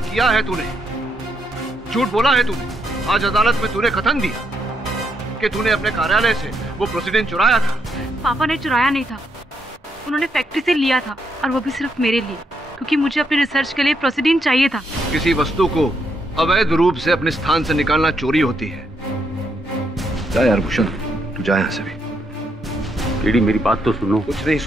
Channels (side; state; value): both; normal; correlation 0.77